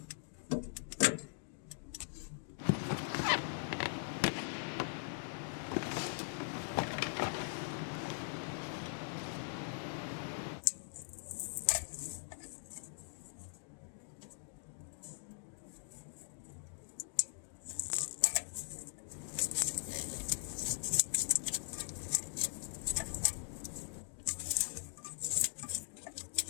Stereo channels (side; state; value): right; silent; digital silence